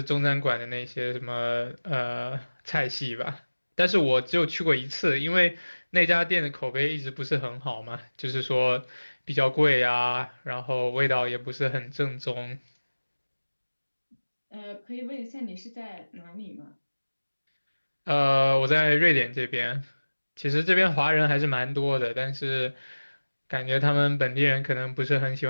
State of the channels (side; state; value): both; inverted; correlation -1.00